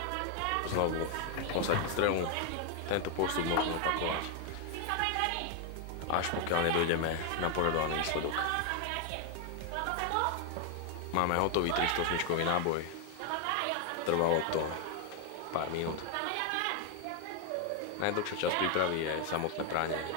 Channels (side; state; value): both; different; correlation 0.01